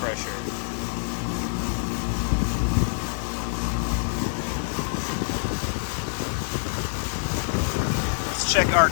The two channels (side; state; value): right; silent; digital silence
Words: Let's check our